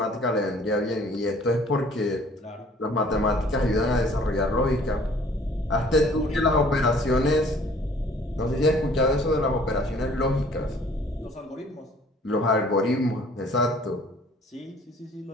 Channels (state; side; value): normal; both; correlation 0.54